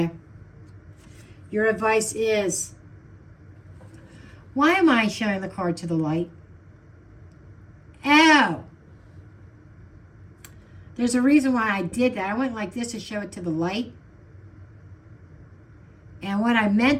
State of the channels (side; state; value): both; identical; correlation 1.00